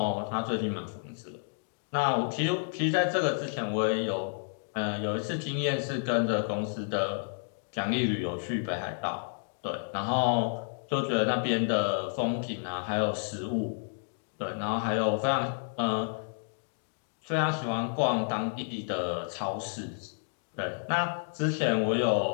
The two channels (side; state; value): right; silent; digital silence